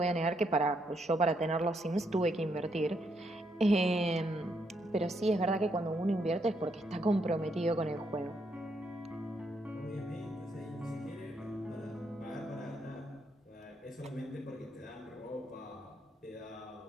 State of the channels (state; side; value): normal; both; correlation 0.76